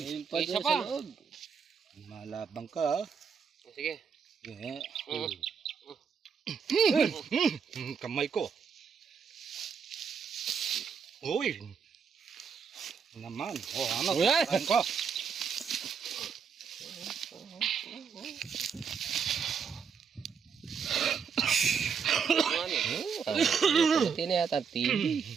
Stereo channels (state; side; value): quieter; left; 6.4 dB